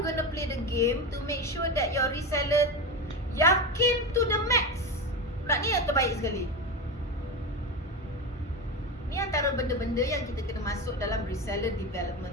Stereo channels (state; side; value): normal; both; correlation 0.19